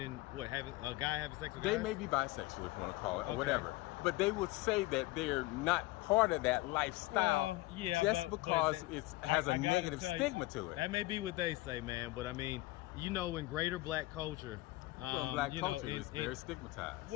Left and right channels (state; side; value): quieter; right; 20.0 dB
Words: what? Having a guy having sex with guys? They may be bisexual, if you want to call it, or whatever. But they would say that they're not part of that lifestyle. Well, yeah, just because it has a negative stigma to it. That may be what they say, man. But I mean, you know, in greater black culture, black culture is very stigmatized.